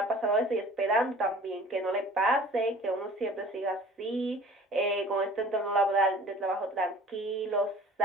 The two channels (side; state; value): both; normal; correlation 0.47